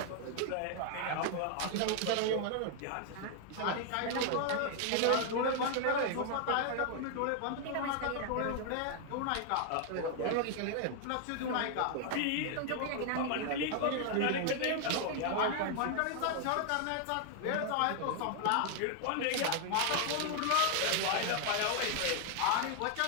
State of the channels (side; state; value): both; different; correlation 0.00